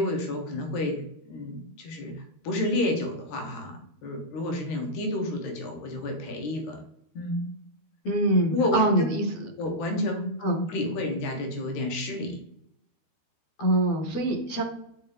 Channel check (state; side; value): late; right; 13 ms